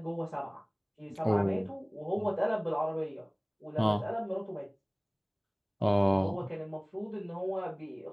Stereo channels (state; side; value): identical; both; correlation 1.00